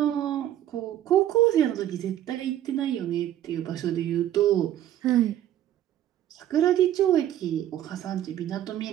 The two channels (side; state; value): left; quieter; 12.1 dB